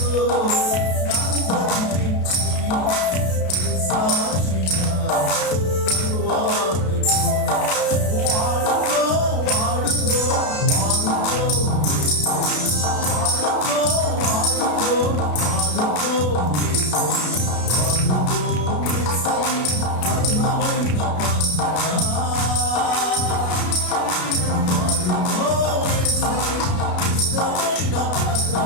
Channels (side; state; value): right; late; 33 ms